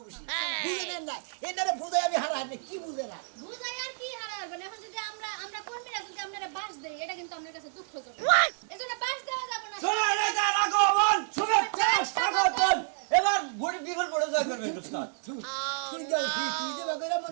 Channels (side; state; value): left; silent; digital silence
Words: বেশি বুঝে নেন না এনারে বুঝাই আমি হারা হারি কি বুঝে না বুঝাই আর কি হারাবেন এখন যদি আমরা কর্মীরা যদি আপনারা বাস দেই এটা কিন্তু আপনার কাছে দুঃখজনক এজন্য বাস দেওয়া যাবে না শোনা নেতার আগমন শুভেচ্ছা স্বাগতম এবার ভোট বিফল পড়ে জয় করবে উস্তাদ তুই যে বাগেরা